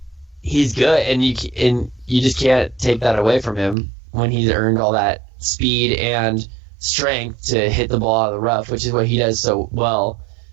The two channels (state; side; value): drops out; left; at 3.8 s